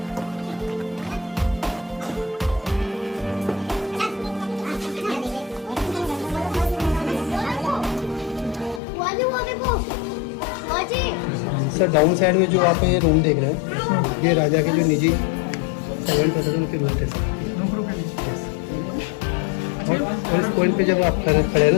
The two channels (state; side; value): drops out; right; at 8.8 s